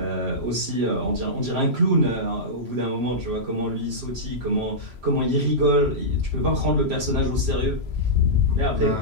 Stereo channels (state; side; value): late; left; 3.0 ms